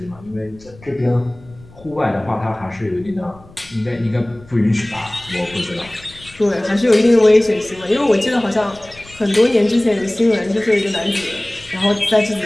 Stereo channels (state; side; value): noise; left; rumble, 23 dB below the sound